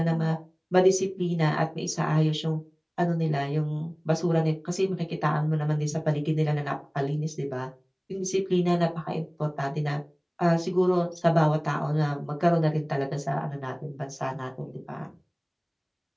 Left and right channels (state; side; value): identical; both; correlation 1.00